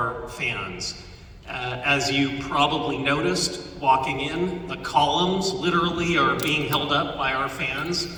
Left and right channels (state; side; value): identical; both; correlation 1.00